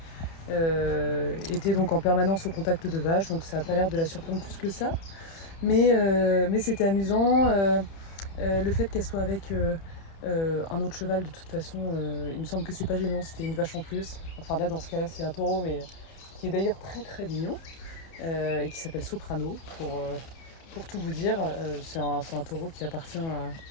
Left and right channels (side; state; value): right; late; 31 ms